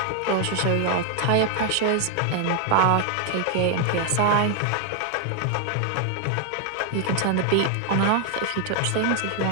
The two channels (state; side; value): different; both; correlation 0.00